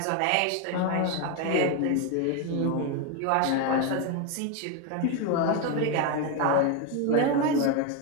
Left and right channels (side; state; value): both; different; correlation 0.02